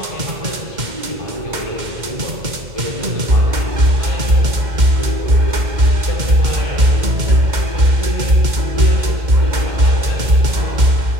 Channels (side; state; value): left; late; 2.1 ms